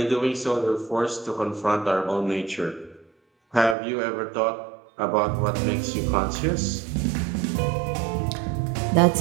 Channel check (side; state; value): left; drops out; at 3.8 s